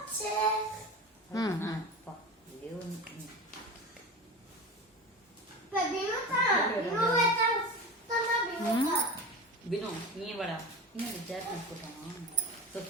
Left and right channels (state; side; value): normal; both; correlation 0.28